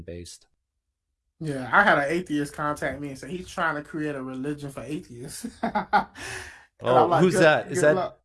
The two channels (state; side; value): identical; both; correlation 1.00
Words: based. Yeah, I had an atheist contact me and say he's trying to create a religion for atheists. Like, who's that? Is that